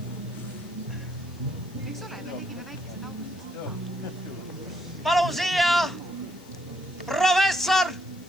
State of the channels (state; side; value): noise; left; hiss, 25 dB below the sound